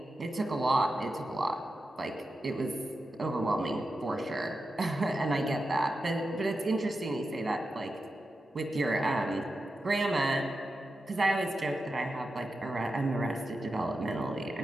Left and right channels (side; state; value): both; normal; correlation 0.90